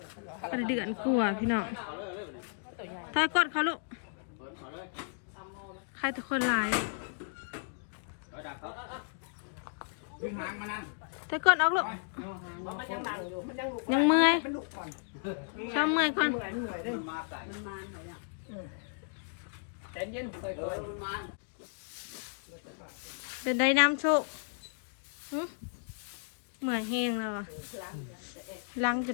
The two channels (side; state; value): right; silent; digital silence